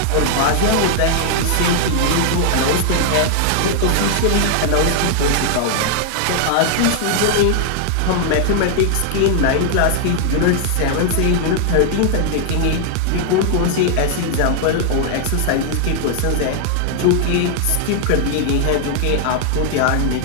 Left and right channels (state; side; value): different; both; correlation 0.00